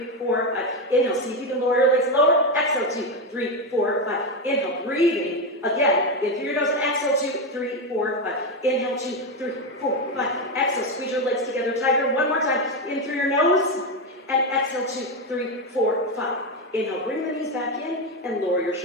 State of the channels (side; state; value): both; normal; correlation 0.11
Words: 4, 5. Inhale, see if you can lower your legs lower. Exhale, 2, 3, 4, 5. Inhale, breathing. Again, in through your nose and exhale, 2, 3, 4, 5. Inhale, 2, 3, 4, 5. Exhale, squeeze your legs together tighter. One more time. In through your nose. And exhale, 2, 3, 4, 5. Inhale, bring the knees back in and lower your